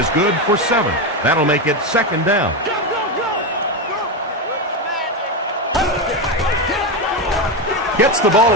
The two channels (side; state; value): both; normal; correlation 0.12